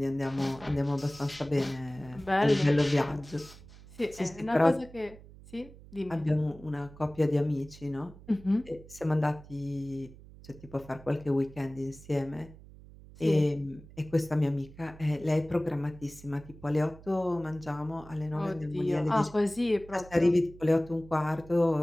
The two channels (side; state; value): right; noise; hum, 19 dB below the sound